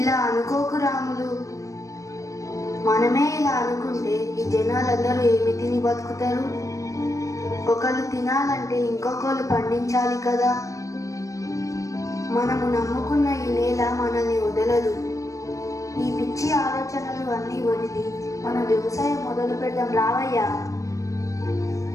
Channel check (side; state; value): right; late; 0.16 ms